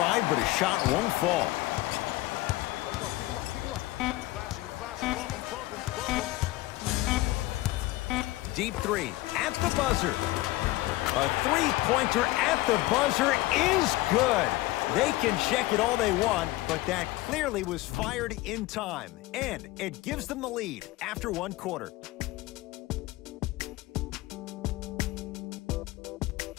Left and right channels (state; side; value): quieter; right; 18.5 dB